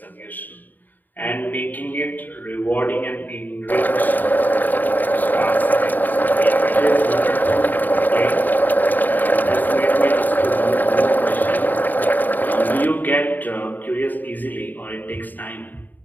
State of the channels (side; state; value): right; late; 0.087 ms